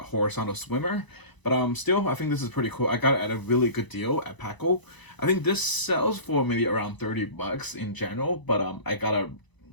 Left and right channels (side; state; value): right; late; 1.0 ms